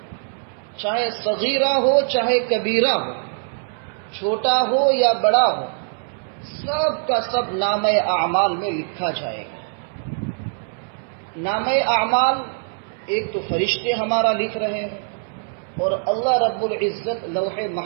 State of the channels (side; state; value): left; silent; 64 dB below the other